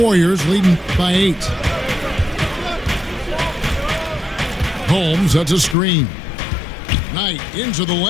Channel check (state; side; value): drops out; right; at 5.8 s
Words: Warriors leading by 8. Holmes, that's a screen. Knight into the